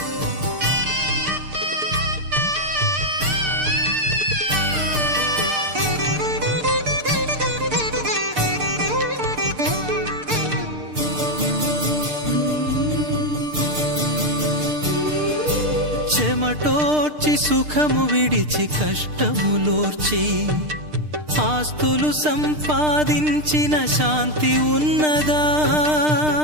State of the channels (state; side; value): late; left; 6.6 ms